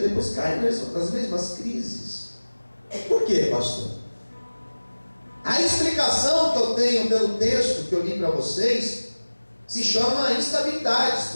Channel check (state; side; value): inverted; both; correlation -1.00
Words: e depois caíram nas mesmas crises. Por quê, pastor? A explicação que eu tenho pelo texto que eu li para vocês se chama instabilidade